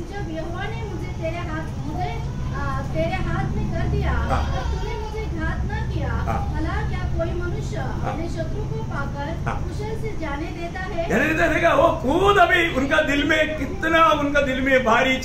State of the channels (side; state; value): both; identical; correlation 1.00